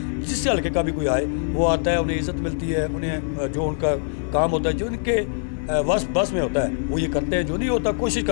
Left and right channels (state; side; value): silent; right; 60 dB below the other